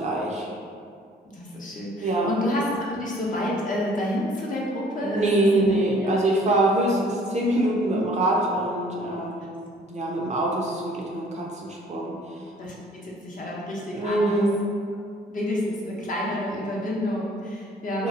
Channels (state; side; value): normal; both; correlation 0.56